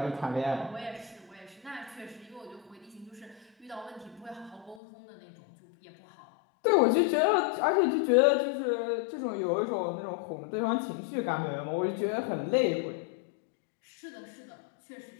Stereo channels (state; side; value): drops out; right; at 4.8 s